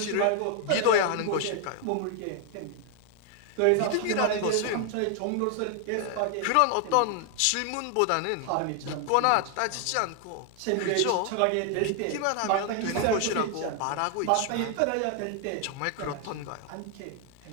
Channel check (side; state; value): both; different; correlation 0.00